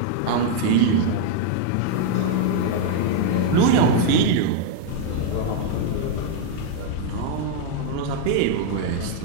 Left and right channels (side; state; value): both; different; correlation 0.00